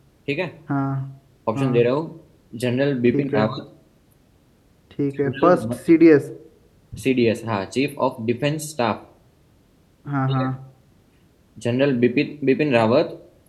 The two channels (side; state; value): both; identical; correlation 1.00